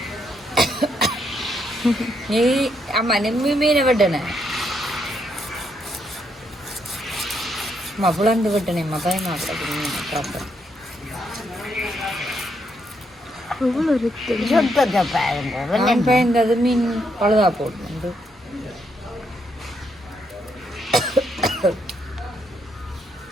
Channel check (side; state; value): both; normal; correlation 0.76